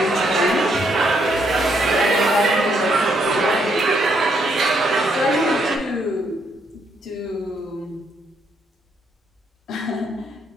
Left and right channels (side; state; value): both; normal; correlation 0.73